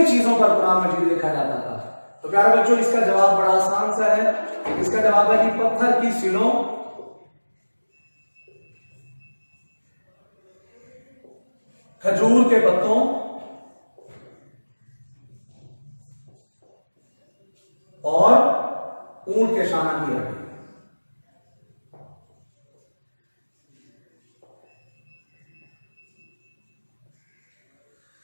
चीजों पर कुरान मजीद लिखा जाता था? तो प्यारे बच्चों, इसका जवाब बड़ा आसान सा है। इसका जवाब है कि पत्थर की सिलों, खजूर के पत्तों और ऊंट के शाना की हड्डी।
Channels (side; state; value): both; inverted; correlation -1.00